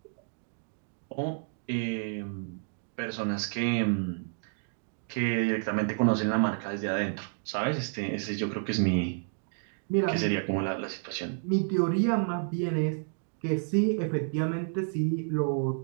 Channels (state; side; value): silent; left; digital silence